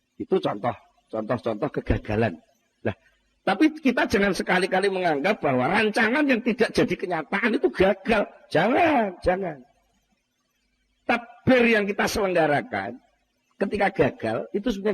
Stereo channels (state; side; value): identical; both; correlation 1.00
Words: Itu contoh kegagalan. Tapi kita jangan sekali-kali menganggap bahwa rancangan yang tidak jadi kenyataan itu gagal. Jangan. Takbir yang kita selenggarakan ketika gagal, itu